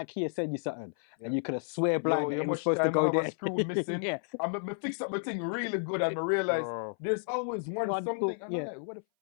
send you something, and you could have swear blind that it was supposed to go there. A screw missing. Yeah. I fixed up my thing really good, and I realized there's always one something, and I'm like, what the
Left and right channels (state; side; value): silent; right; 57 dB below the other